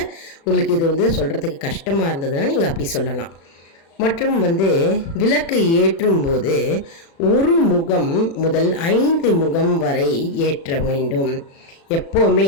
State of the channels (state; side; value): late; right; 36 ms